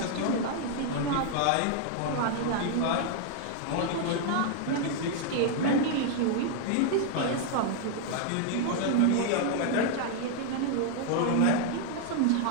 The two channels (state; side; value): different; both; correlation 0.00